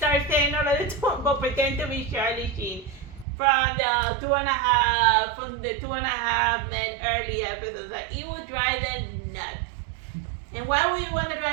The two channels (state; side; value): drops out; left; at 3.2 s